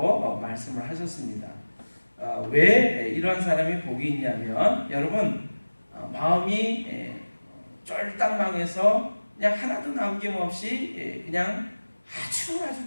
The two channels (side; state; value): both; inverted; correlation -1.00